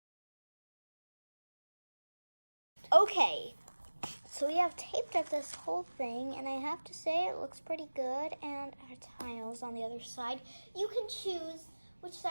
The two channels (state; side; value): inverted; both; correlation -1.00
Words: Okay, so we have taped up this whole thing, and I have to say it looks pretty good, and our tiles on the other side. You can choose which